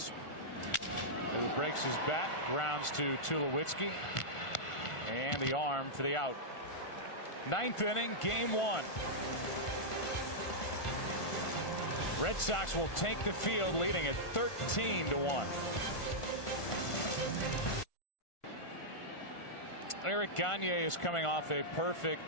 who breaks his bat, grounds to Tulowitzki, and the arm for the out. 9th inning, Game 1. Red Sox will take the field, leading at 13-1. Eric Gagne is coming off a perfect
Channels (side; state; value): right; late; 1.5 ms